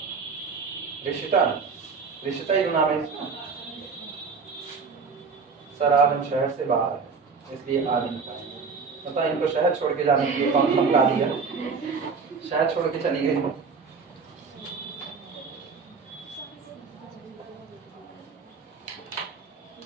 ऋषिता, ऋषिता ही नाम है इसका। सर आज हम शहर से बाहर है इसलिए आज नहीं पाएंगे। पता इनको शहर छोड़ के जाने के लिए कौन धमका दिया, शहर छोड़ के चली गई।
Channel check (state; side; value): quieter; left; 5.1 dB